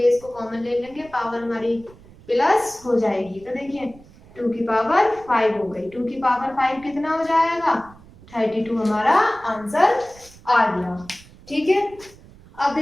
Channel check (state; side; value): noise; right; rumble, 23 dB below the sound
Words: को कॉमन ले लेंगे, पावर हमारी प्लस हो जाएगी। तो देखिए 2 की पावर 5 हो गई, 2 की पावर 5 कितना हो जाएगा 32 हमारा आंसर आ गया। ठीक है, अब